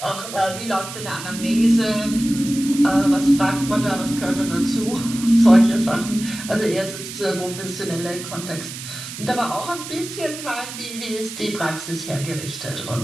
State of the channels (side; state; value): right; noise; hiss, 10 dB below the sound